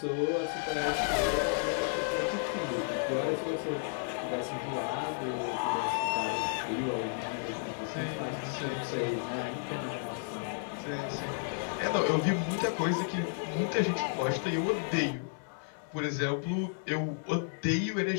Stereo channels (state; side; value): silent; right; digital silence